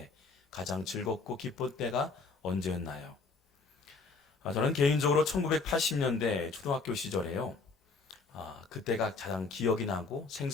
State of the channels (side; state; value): right; quieter; 4.2 dB